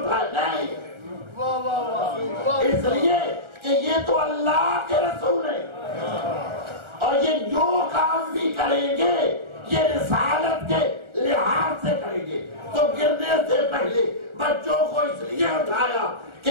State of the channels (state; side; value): late; left; 1.4 ms